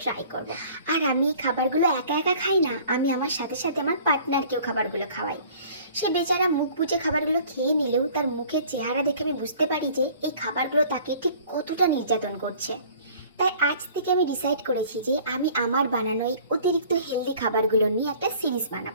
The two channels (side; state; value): both; inverted; correlation -0.50